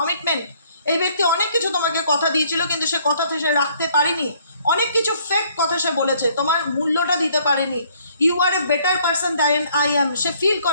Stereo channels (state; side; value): inverted; both; correlation -0.63